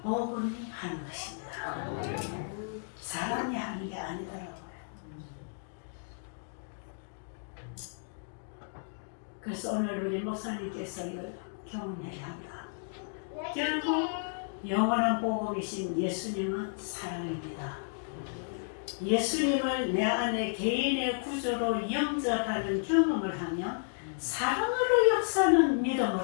복음이 하는 것입니다. 사람이 하는 게 아니더라고요. 그래서 오늘 우리 목사님께서 경험해야 한다. 결국 영원한 복음이신 예수님은 사랑입니다. 예수님을 내 안에 개인의 구조로 영접하는 경험을 하면 사랑으로 역사는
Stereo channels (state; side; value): silent; right; digital silence